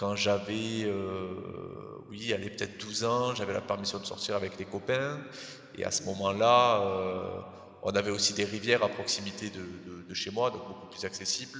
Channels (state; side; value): identical; both; correlation 1.00